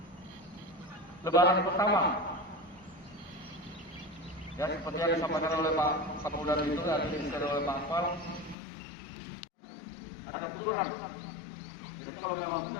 Lebaran pertama. Ya, seperti yang disampaikan oleh Pak Kapolda itu, yang disampaikan oleh Pak Akmal, ada aturan. Jadi kalau memang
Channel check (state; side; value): drops out; right; at 8.6 s